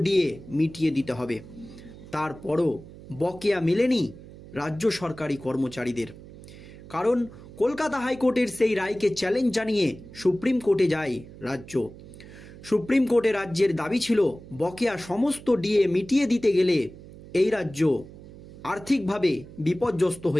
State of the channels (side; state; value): right; noise; hum, 17 dB below the sound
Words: ডিএ মিটিয়ে দিতে হবে। তারপরও বকেয়া মেলেনি রাজ্য সরকারি কর্মচারীদের। কারণ কলকাতা হাইকোর্টের সেই রায়কে চ্যালেঞ্জ জানিয়ে সুপ্রিম কোর্টে যায় রাজ্য। সুপ্রিম কোর্টে রাজ্যের দাবি ছিল বকেয়া সমস্ত ডিএ মিটিয়ে দিতে গেলে এই রাজ্য আর্থিকভাবে বিপর্যস্ত